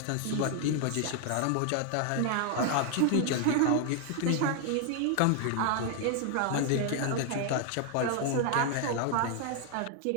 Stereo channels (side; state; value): both; different; correlation 0.00